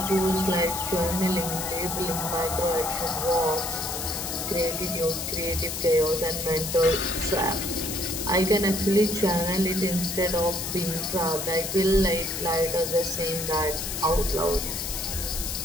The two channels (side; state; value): left; noise; hiss, 4 dB below the sound